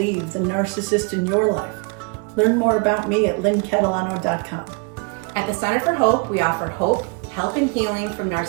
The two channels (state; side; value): quieter; left; 32.7 dB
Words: the Narcissist in Your Life. Learn more about me at lynncatalano.com. At the Center for Hope, we offer hope, help, and healing from